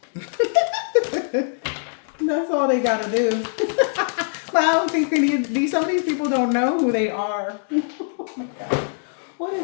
That's all they got to do. But I don't think some of these people don't know who they are. Oh my God. What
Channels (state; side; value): silent; right; 64 dB below the other